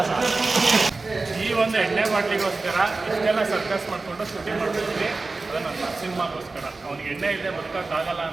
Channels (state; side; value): quieter; left; 3.6 dB